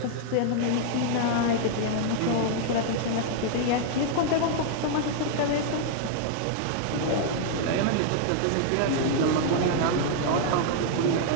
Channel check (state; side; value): different; both; correlation -0.01